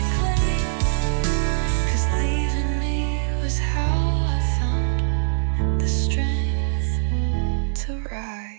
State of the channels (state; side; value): silent; left; digital silence